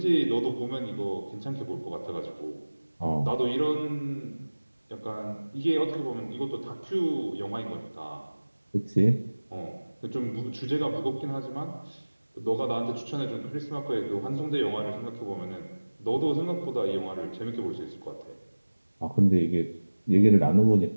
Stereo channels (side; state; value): both; inverted; correlation -1.00